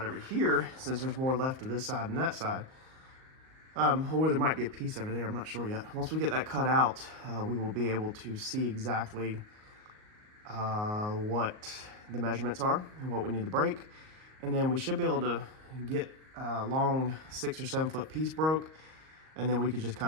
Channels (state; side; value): late; left; 38 ms